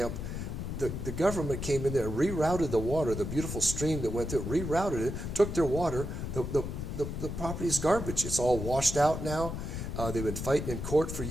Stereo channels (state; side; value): noise; left; rumble, 5 dB below the sound